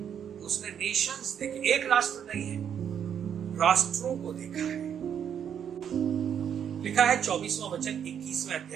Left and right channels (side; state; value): left; quieter; 8.5 dB